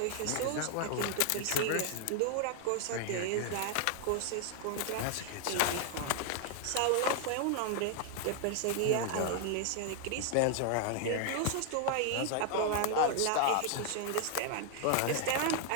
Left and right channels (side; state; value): both; different; correlation 0.00